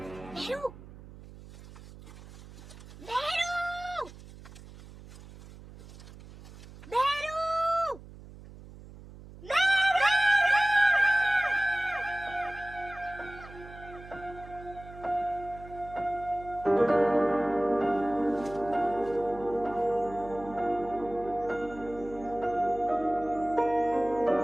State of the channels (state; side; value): noise; right; hum, 17 dB below the sound